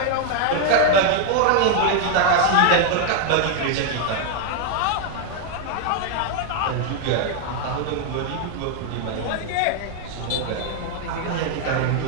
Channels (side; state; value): both; different; correlation 0.00